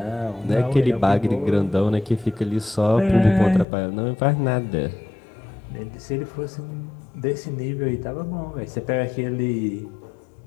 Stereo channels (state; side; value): drops out; right; at 3.7 s